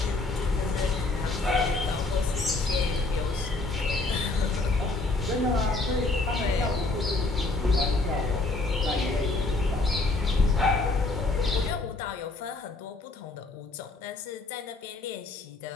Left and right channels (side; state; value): right; quieter; 3.2 dB